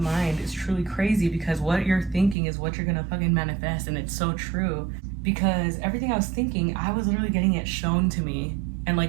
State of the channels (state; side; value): drops out; left; at 2.4 s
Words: mind is truly crazy, because what you're thinking is what you're gonna fucking manifest. And it's so true, because everything I was thinking, I was literally getting it shown to me and